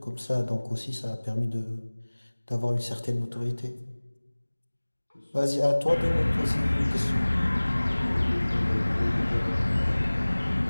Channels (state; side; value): inverted; both; correlation -1.00